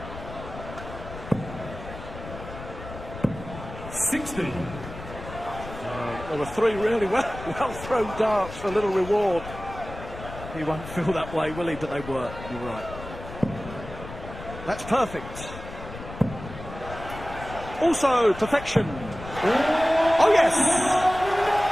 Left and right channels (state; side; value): noise; left; rumble, 12 dB below the sound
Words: 60. There were 3 really well thrown darts for little reward. He won't feel that way, will he? But they were. You're right. That's perfect. Also, perfection. Oh, yes!